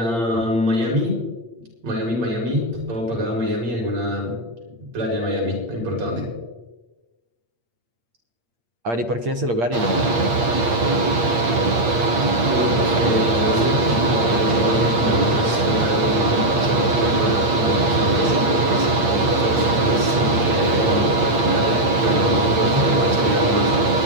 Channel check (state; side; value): late; left; 8.6 ms